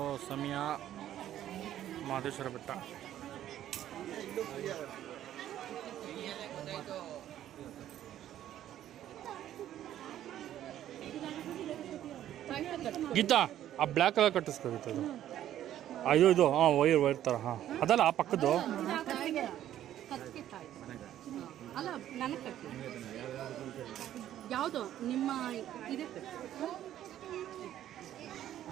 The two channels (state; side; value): quieter; left; 11.9 dB